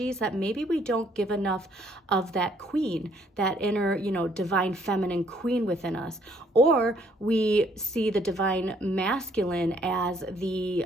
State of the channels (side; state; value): both; normal; correlation 0.65